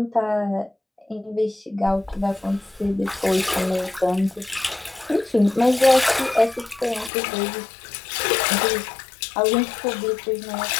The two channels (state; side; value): drops out; right; at 7.1 s